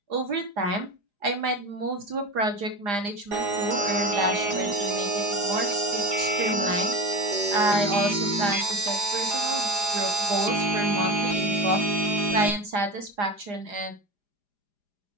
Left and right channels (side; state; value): left; late; 4.9 ms